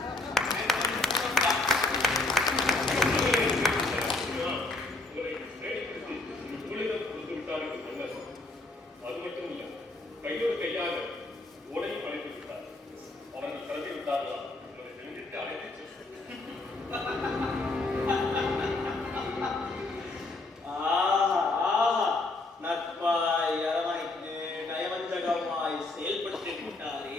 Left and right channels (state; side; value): quieter; right; 3.1 dB